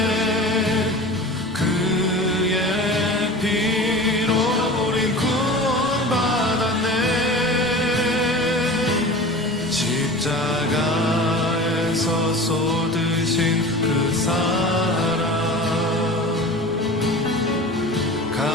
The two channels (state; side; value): normal; both; correlation 0.36